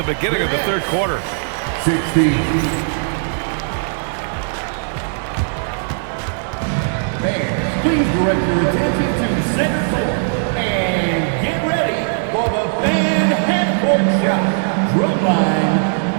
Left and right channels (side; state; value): left; silent; 56 dB below the other